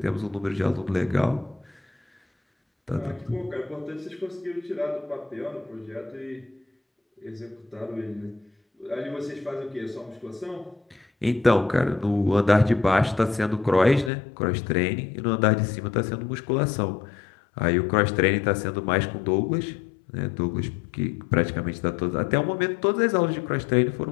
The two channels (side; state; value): right; drops out; at 14.1 s